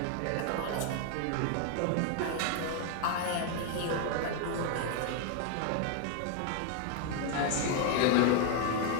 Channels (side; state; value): both; different; correlation 0.00